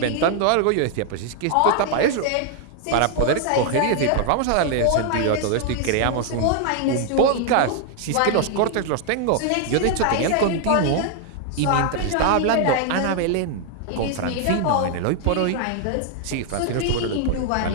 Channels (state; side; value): different; both; correlation 0.00